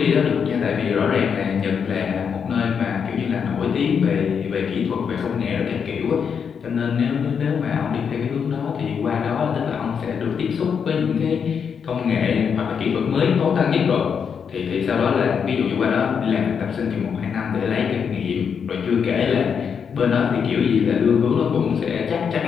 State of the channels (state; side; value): quieter; right; 6.8 dB